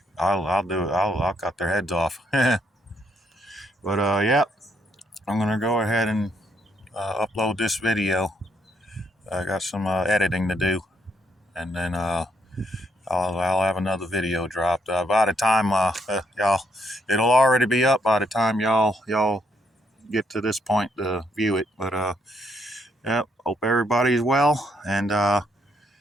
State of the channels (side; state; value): both; normal; correlation 0.73